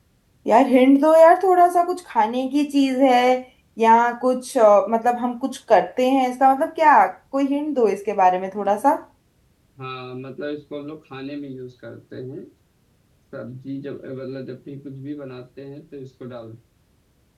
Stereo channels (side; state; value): both; identical; correlation 1.00